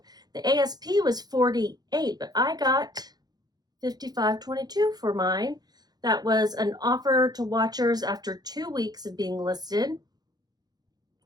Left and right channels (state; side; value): late; left; 0.19 ms